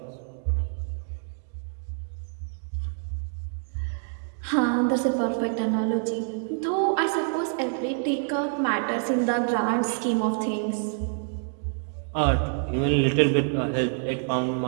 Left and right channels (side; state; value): left; silent; 60 dB below the other